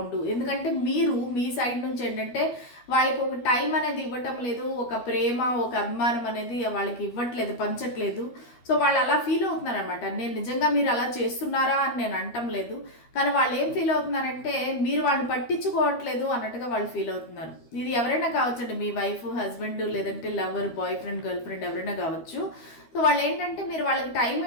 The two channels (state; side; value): late; right; 12 ms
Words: ఎందుకంటే మీరు మీ సైడ్ నుంచి ఏంటంటే వాళ్ళకి ఒక టైం అనేది ఇవ్వటం లేదు, ఒక ప్రేమ ఒక అభిమానం అనేది వాళ్ళకి ఇవ్వట్లేదు, పంచట్లేదు. సో వాళ్ళు అలా ఫీల్ అవుతున్నారు అనమాట. నేను నిజంగా మీరు అలా చేస్తున్నారా అని నేను అంటం లేదు, కానీ వాళ్ళు ఏం ఫీల్ అవుతున్నారంటే మీరు వాళ్ళని పట్టించుకోవట్లేదు అన్నట్టుగా వాళ్ళు ఫీల్ అవుతున్నారు. ఇది ఎవరైనా కావచ్చండి, మీ వైఫ్ హస్బెండ్ లేదంటే lover boy friend girl friend ఎవరైనా కావచ్చు. సో వాళ్ళు ఏంటంటే మీరు వాళ్ళకి టైం